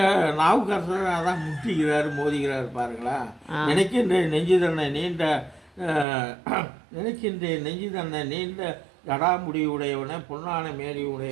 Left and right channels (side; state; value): left; drops out; at 6.1 s